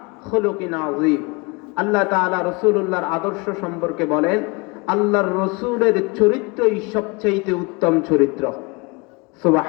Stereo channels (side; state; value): right; quieter; 28.0 dB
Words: খুলুকিন আযীম। আল্লাহ তাআলা রাসূলুল্লাহর আদর্শ সম্পর্কে বলেন, আল্লাহর রাসূলের চরিত্রই সবচেয়ে উত্তম চরিত্র।